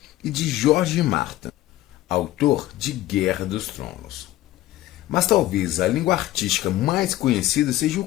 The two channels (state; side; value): quieter; right; 15.3 dB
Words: e de George Martin, autor de Guerra dos Tronos. Mas talvez a língua artística mais conhecida seja